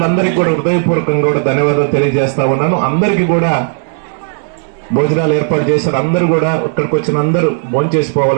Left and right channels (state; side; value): silent; left; digital silence